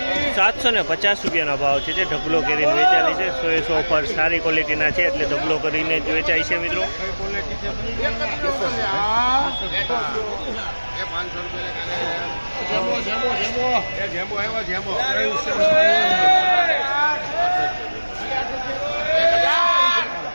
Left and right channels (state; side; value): inverted; both; correlation -1.00